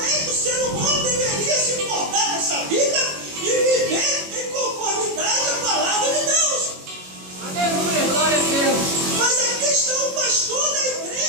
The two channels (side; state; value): left; late; 21 ms